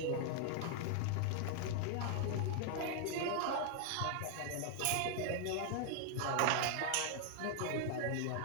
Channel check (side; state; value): both; different; correlation 0.00